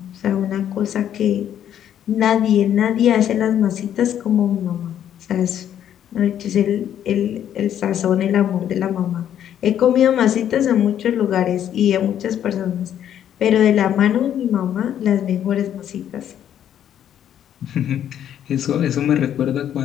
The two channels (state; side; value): quieter; right; 10.2 dB